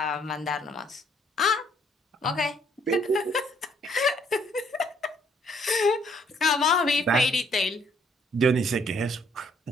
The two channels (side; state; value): both; normal; correlation 0.66